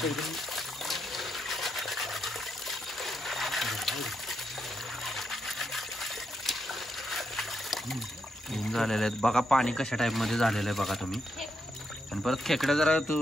एकदम झालेले आहेत बघा. पाणी कशा टाइप मध्ये झालेलं आहे बघा तुम्ही. आणि परत खेकडे जरा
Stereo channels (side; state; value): both; normal; correlation 0.81